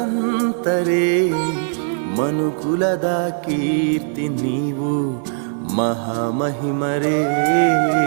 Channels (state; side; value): silent; left; digital silence